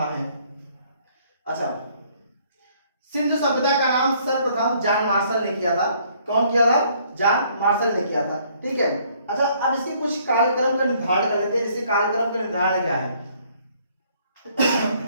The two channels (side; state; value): both; inverted; correlation -0.64